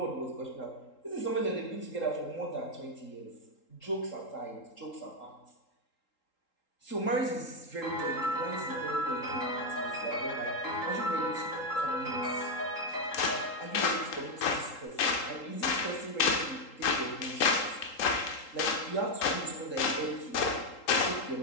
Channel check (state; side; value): late; right; 3.8 ms